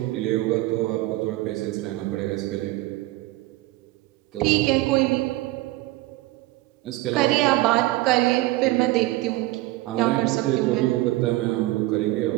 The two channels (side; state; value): left; quieter; 18.6 dB